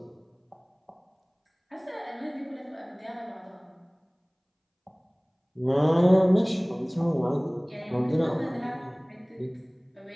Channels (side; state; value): both; identical; correlation 1.00